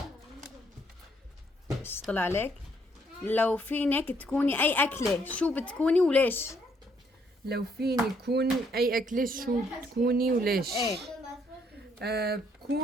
ايش طلع عليك؟ لو فينك تكوني اي اكلة شو بتكوني وليش؟ لو فيني كون اي اكلة شو بتكوني وليش؟ ايه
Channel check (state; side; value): normal; both; correlation 0.69